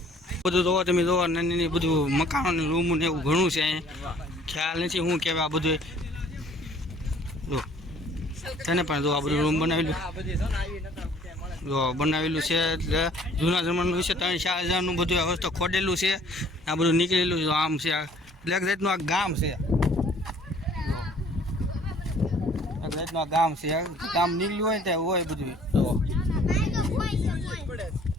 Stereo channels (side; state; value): both; normal; correlation 0.56